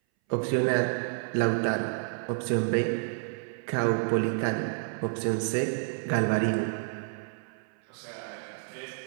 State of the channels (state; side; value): silent; left; 58 dB below the other